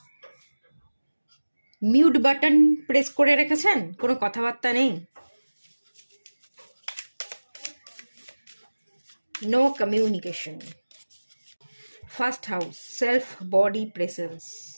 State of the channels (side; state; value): both; inverted; correlation -1.00